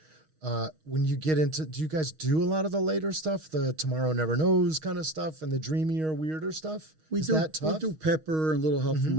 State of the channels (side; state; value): left; late; 6.4 ms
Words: When you get into, do you guys do a lot of the later stuff, the Tomorrow Never Knows kind of stuff, and the dreamier, weirder stuff? Is that tough? We do Pepper and Little Help from